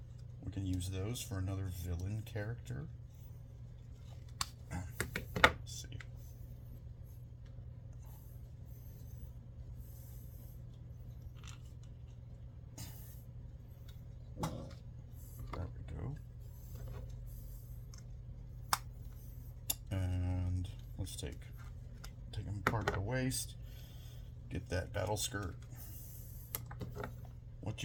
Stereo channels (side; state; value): both; identical; correlation 1.00